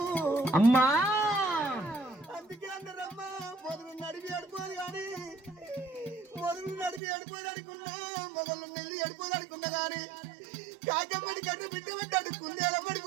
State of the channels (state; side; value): drops out; left; at 7.0 s